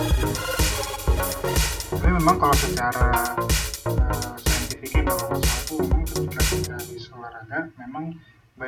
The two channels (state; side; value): identical; both; correlation 1.00